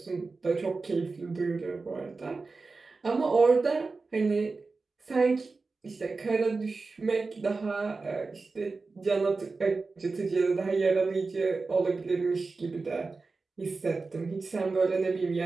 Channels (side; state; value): left; quieter; 4.0 dB